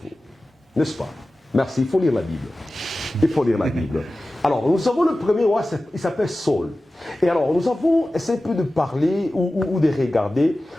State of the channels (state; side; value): normal; both; correlation 0.96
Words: vous. N'est-ce pas? Merci, il faut lire la Bible. Il faut lire la Bible. Alors, nous avons le premier roi, il s'appelle Saul. Et alors, nous avons essayé un peu de parler ou de regarder